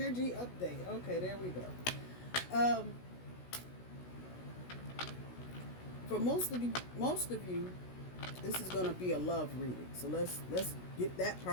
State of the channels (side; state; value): right; late; 16 ms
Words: update. Okay, there we go. For most of you, this is going to be a love reading. So let's get that